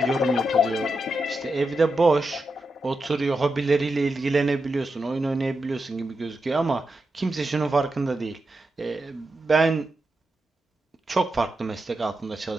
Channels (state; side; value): normal; both; correlation 0.88